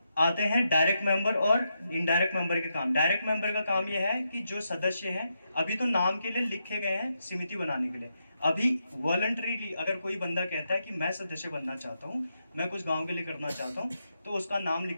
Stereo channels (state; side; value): inverted; both; correlation -0.83